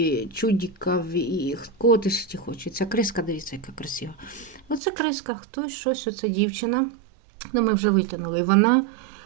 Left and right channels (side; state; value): left; drops out; at 4.8 s